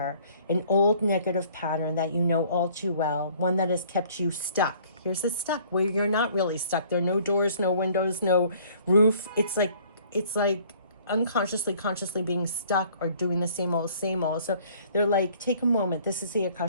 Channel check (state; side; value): inverted; both; correlation -0.56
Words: an old negative pattern that you know all too well, one that has kept you stuck. Here's the stuck where you're not really stuck. There are no doors, no windows, no roof. It's like unconsciously, consciously being stuck or doing the same old, same old. So they're like, take a moment. This is the